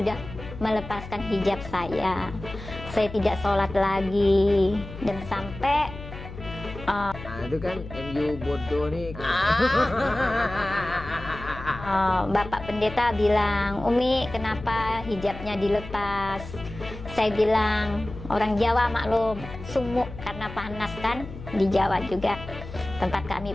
melepaskan hijab saya. Saya tidak sholat lagi, dan sampai Itu kan MU bodoh nih. Bapak Pendeta bilang, Umi kenapa hijabnya dilepas? Saya bilang, orang Jawa maklum, sumuk karena panas kan, di Jawa juga tempat kami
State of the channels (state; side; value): noise; left; hum, 12 dB below the sound